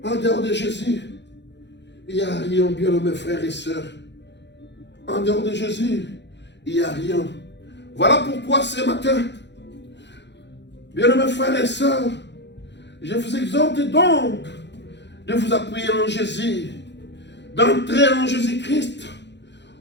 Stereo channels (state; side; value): late; right; 0.51 ms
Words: En dehors de Jésus, il n'y a rien, bien mes frères et sœurs. En dehors de Jésus, il n'y a rien. Voilà pourquoi ce matin, bien mes frères et sœurs, je vous exhorte donc de vous appuyer en Jésus, d'entrer en Jésus-Christ,